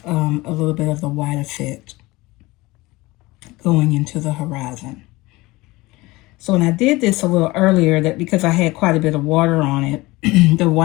a little bit of the white effect going into the horizon. So when I did this a little earlier, that because I had quite a bit of water on it, the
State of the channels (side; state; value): right; quieter; 21.0 dB